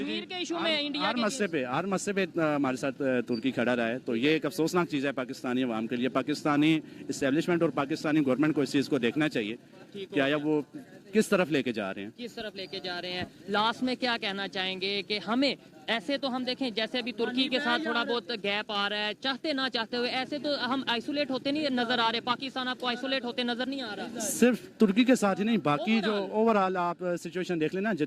के इशू में, इंडिया हर के मसले पे हमारे साथ तुर्की खड़ा रहा है, तो ये एक अफसोसनाक चीज़ है पाकिस्तानी अवाम के लिए। पाकिस्तानी इस्टेब्लिशमेंट और पाकिस्तानी गवर्नमेंट को इस चीज़ को देखना चाहिए कि आया वो किस तरफ लेके जा रहे हैं, किस तरफ लेके जा रहे हैं। लास्ट में क्या कहना चाहेंगे कि हमें ऐसे तो हम देखें जैसे अभी तुर्की के साथ थोड़ा बहुत गैप आ रहा है, चाहते ना चाहते हुए ऐसे तो हम आइसोलेट होते नहीं नजर आ रहे, पाकिस्तान आपको आइसोलेट होते नजर नहीं आ रहा? सिर्फ तुर्की के साथ ही नहीं, बाकी जो ओवरऑल आप सिचुएशन देख लेना,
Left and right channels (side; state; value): both; identical; correlation 1.00